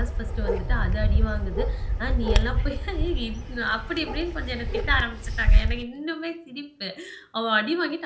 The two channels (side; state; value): both; identical; correlation 1.00